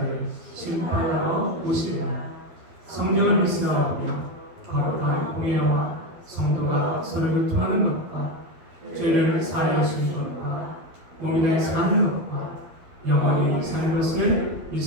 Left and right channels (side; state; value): left; late; 12 ms